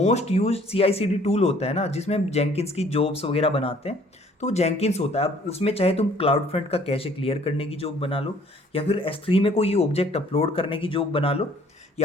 यूज CI/CD टूल होता है ना, जिसमें हम जेंकिंस की जॉब्स वगैरह बनाते हैं, तो वो जेंकिंस होता है। अब उसमें चाहे तुम क्लाउड फ्रंट का कैशे क्लियर करने की जॉब बना लो, या फिर S3 में कोई ऑब्जेक्ट अपलोड करने की जॉब बना लो,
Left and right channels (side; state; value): both; normal; correlation 0.58